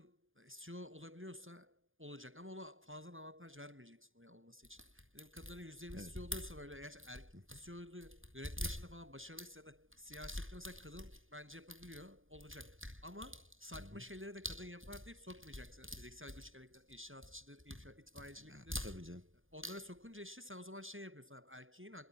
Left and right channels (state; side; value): late; left; 0.59 ms